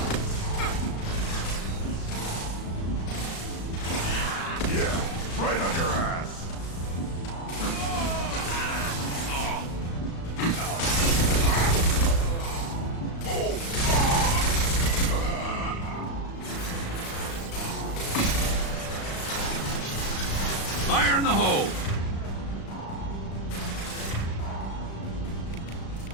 Yeah, right on your ass. Fire in the hole!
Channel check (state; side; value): late; right; 36 ms